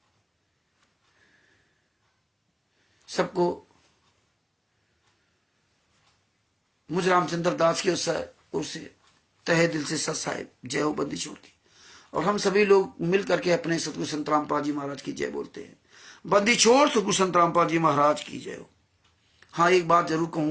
सबको मुझ रामचंद्र दास की ओर से तहे दिल से सत साहिब जय हो बंदी छोड़ की। और हम सभी लोग मिल करके अपने सतगुरु संत रामपाल जी महाराज की जय बोलते हैं। बंदी छोड़ सतगुरु संत रामपाल जी महाराज की जय हो। हाँ, एक बात जरूर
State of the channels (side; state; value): both; identical; correlation 1.00